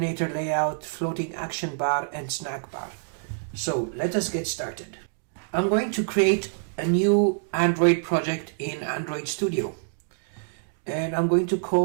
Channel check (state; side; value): silent; left; digital silence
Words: layout, floating action bar, and snack bar. So let us get started. I'm going to create a new Android project in Android Studio. And I'm going to